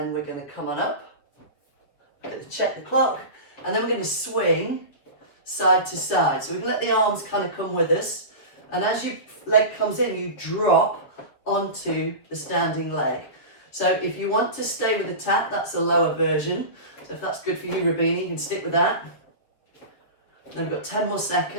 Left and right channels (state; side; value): late; right; 7.4 ms